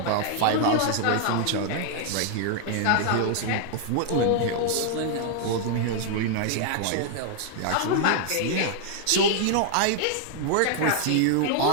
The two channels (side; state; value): both; different; correlation 0.00